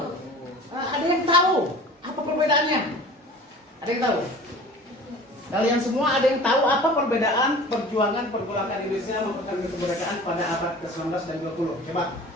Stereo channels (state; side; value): normal; both; correlation 0.42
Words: Ada yang tahu apa perbedaannya? Ada yang tahu? Kalian semua ada yang tahu apa perbedaan perjuangan Indonesia mempertahankan kemerdekaan pada abad ke-19 dan 20? Coba.